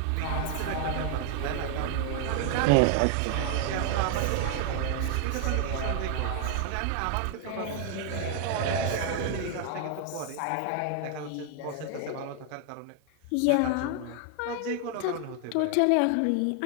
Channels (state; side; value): different; both; correlation 0.00